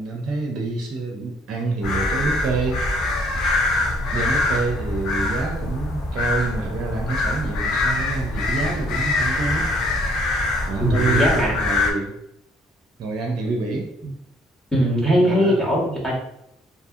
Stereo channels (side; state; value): both; normal; correlation 0.63